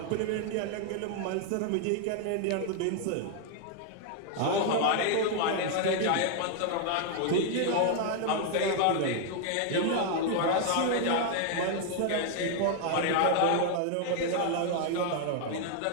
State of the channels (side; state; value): both; different; correlation 0.00